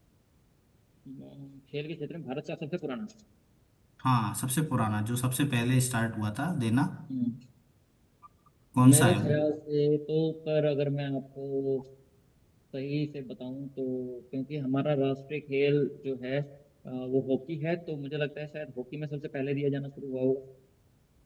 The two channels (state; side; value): identical; both; correlation 1.00